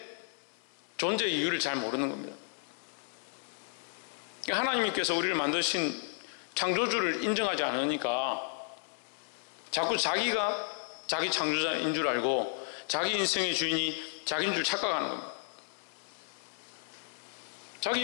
존재의 이유를 잘 모르는 겁니다. 하나님께서 우리를 만드신 창조주를 인정하지 않으니까 자꾸 자기가 자기 창조자인 줄 알고 자기 인생의 주인이 자기인 줄 착각하는 겁니다. 자기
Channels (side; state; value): right; silent; 56 dB below the other